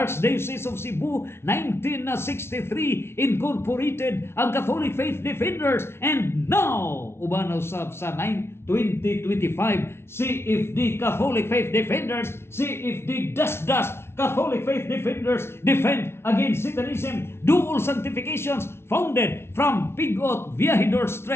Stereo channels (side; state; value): right; late; 0.12 ms